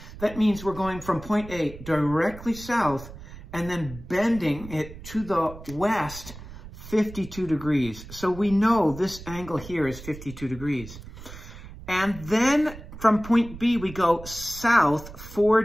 That means we're going from point A directly south and then bending it to the west 52 degrees. So we know this angle here is 52 degrees. And then from point B, we go south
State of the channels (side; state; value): right; noise; rumble, 14 dB below the sound